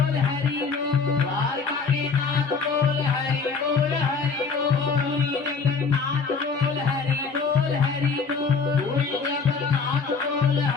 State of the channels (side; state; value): right; quieter; 5.1 dB